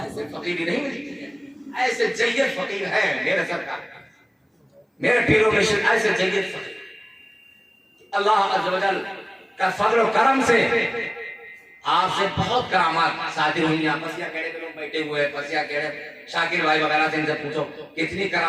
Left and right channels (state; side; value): identical; both; correlation 1.00